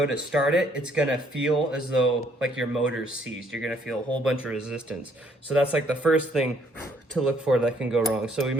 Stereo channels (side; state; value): both; normal; correlation 0.66